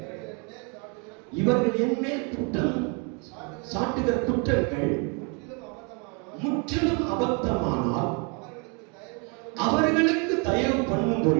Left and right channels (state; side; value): quieter; left; 34.6 dB